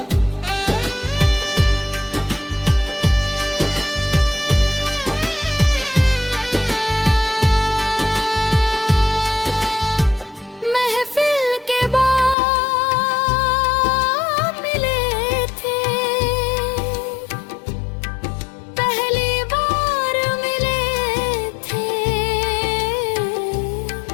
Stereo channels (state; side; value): drops out; right; at 12.4 s